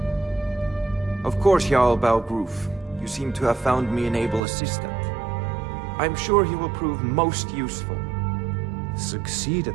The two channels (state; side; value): drops out; left; at 4.4 s